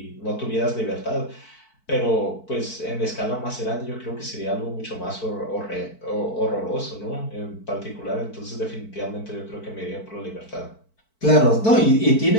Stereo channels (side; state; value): right; late; 4.5 ms